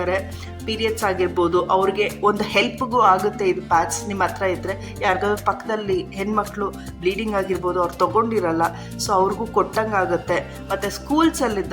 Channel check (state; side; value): identical; both; correlation 1.00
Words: ಪೀರಿಯಡ್ಸ್ ಆಗಿರ್ಬೋದು, ಅವ್ರಿಗೆ ಒಂದು ಹೆಲ್ಪ್ಗೂ ಆಗುತ್ತೆ ಇದು ಪ್ಯಾಚ್ ನಿಮ್ಮ ಹತ್ರ ಇದ್ದರೆ. ಯಾರಿಗಾದ್ರೂ ಪಕ್ಕದಲ್ಲಿ ಹೆಣ್ಮಕ್ಳು ಬ್ಲೀಡಿಂಗ್ ಆಗಿರ್ಬೋದು, ಅವ್ರು ತೊಗೊಂಡಿರಲ್ಲ, ಸೊ ಅವ್ರಿಗೂ ಕೊಟ್ಟಂಗೆ ಆಗುತ್ತೆ. ಮತ್ತು